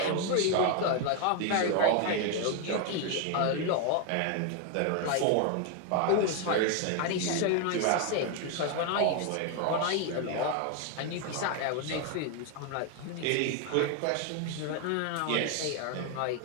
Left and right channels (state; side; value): different; both; correlation 0.01